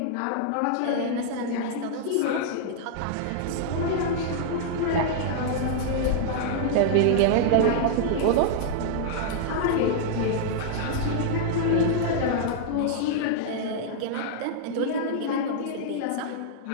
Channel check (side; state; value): both; different; correlation -0.01